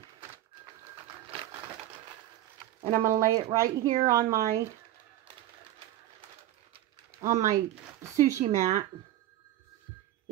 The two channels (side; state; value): left; quieter; 13.7 dB